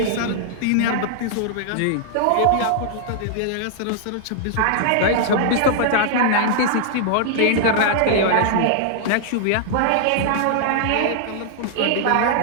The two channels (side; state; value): both; different; correlation -0.01